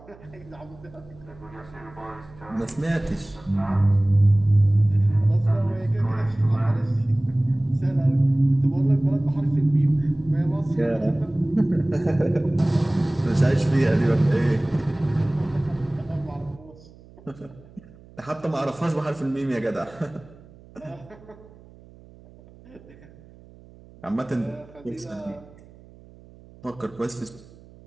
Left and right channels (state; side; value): noise; right; hum, 23 dB below the sound